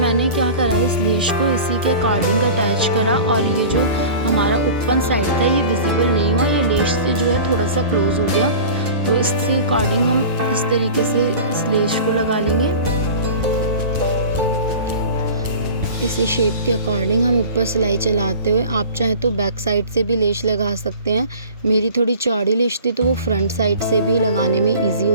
क्या करा है, इस लेश को इसी के अकॉर्डिंग अटैच करा, और ये जो हमारा ओपन साइड था ये विजिबल नहीं हुआ, ये लेश से जो है थोड़ा सा क्लोज हो गया। तो इसके अकॉर्डिंग हम इस तरीके से इस लेश को लगा लेंगे। इसी शेप के अकॉर्डिंग हम ऊपर सिलाई चलाते हुए, आप चाहे तो बैक साइड से भी लेश लगा सकते हैं। मेरी थोड़ी चौड़ी लेश थी तो वो फ्रंट साइड से भी लगाने में इजी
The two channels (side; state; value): both; inverted; correlation -0.38